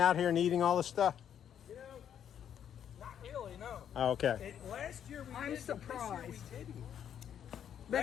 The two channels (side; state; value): right; quieter; 9.2 dB